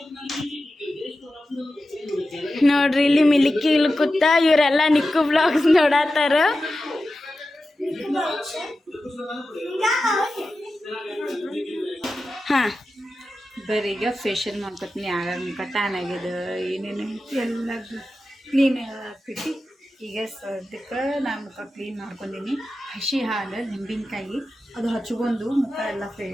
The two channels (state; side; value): normal; both; correlation 0.93